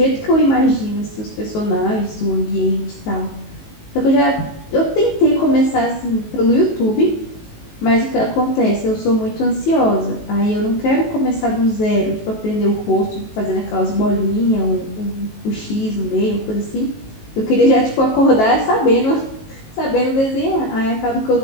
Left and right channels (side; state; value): right; late; 19 ms